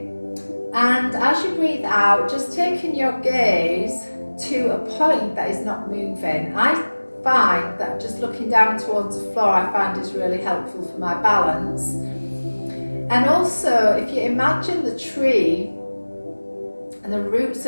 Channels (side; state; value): both; inverted; correlation -1.00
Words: and as you breathe out, just taking your gaze to a point that is not moving. I find that just looking down towards the floor I find is really helpful for my balance. And also, if you imagine the tree and the roots